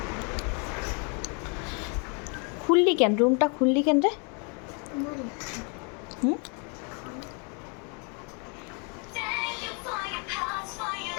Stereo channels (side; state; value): right; quieter; 36.4 dB